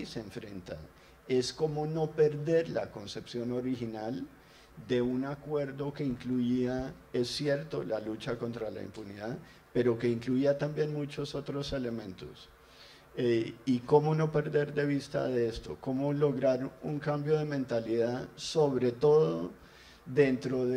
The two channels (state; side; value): identical; both; correlation 1.00